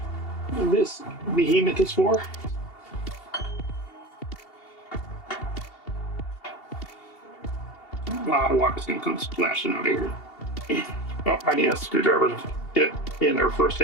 this behemoth is for. A lot of water's gonna come splashing out of here. Oh, I need a screwdriver to get it in there first.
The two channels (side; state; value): right; late; 2.7 ms